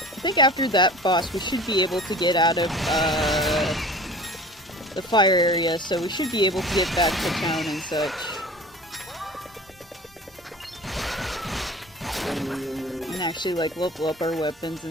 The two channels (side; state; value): both; normal; correlation 0.41